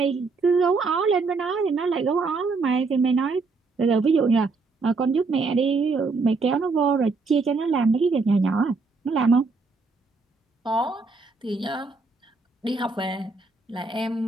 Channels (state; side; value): quieter; left; 4.1 dB